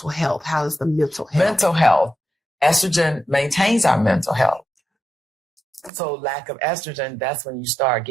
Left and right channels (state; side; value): drops out; left; at 5.9 s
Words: health? How is the mental health? Mental health. Estrogen maintains our mental health. So lack of estrogen, that's when you start